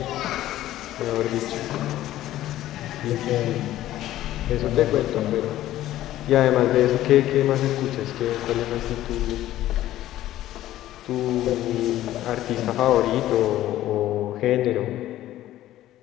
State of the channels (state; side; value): quieter; right; 14.0 dB